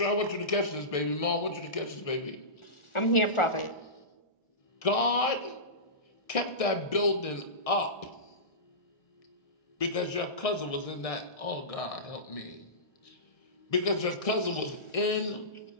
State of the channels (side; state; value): right; late; 1.6 ms